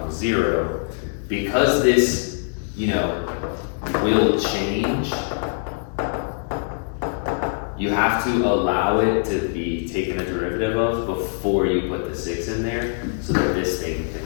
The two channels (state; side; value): silent; right; digital silence